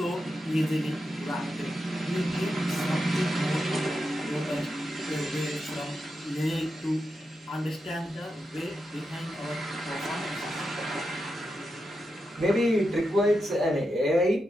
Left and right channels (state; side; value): normal; both; correlation 0.87